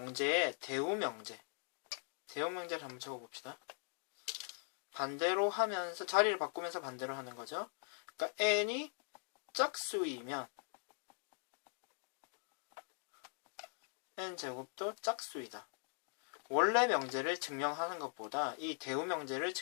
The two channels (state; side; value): silent; right; 50 dB below the other